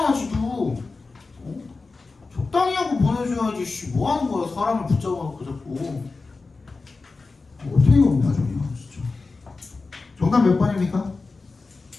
지도. 어? 적당히 하고 보내줘야지. 씨, 뭐 하는 거야? 사람을 붙잡아놓고 자꾸. 어떻게 없냐 저기야 진짜. 정답 몇 번입니까?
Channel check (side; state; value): right; quieter; 3.9 dB